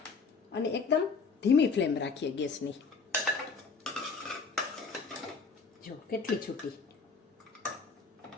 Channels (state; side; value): quieter; right; 4.8 dB